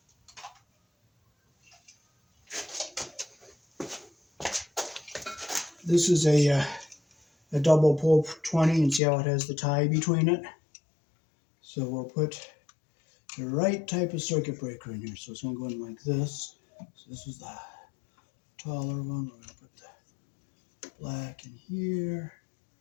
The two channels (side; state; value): right; drops out; at 9.0 s